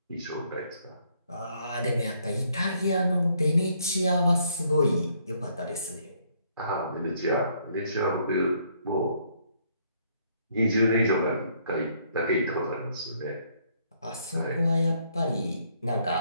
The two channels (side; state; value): both; inverted; correlation -0.68